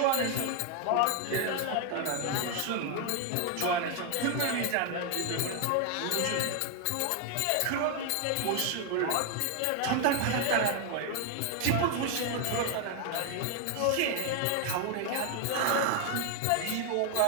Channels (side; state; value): both; different; correlation 0.01